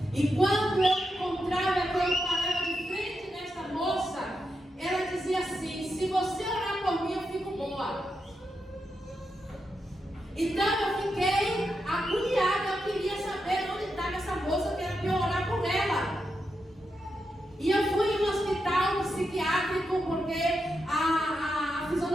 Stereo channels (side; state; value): both; normal; correlation 0.86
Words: E quando eu encontrava, quando eu parava de frente dessa moça, ela dizia assim: se você orar por mim, eu fico boa. Então eu fiquei agoniada, eu queria saber onde estava essa moça, que era para eu orar por ela. E eu fui em um hospital psiquiátrico, porque a